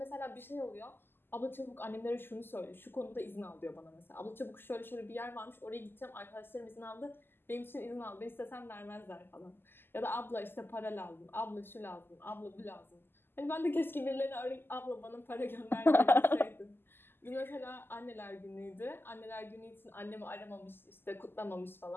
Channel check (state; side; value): late; right; 0.10 ms